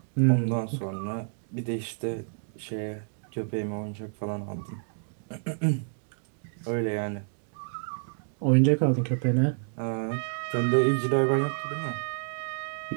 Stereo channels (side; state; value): left; silent; digital silence